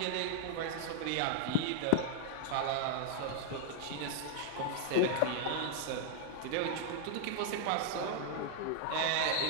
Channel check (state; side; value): different; both; correlation 0.00